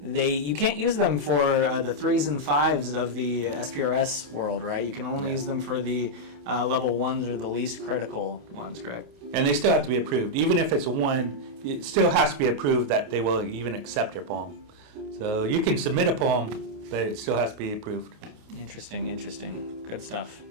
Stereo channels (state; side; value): late; left; 28 ms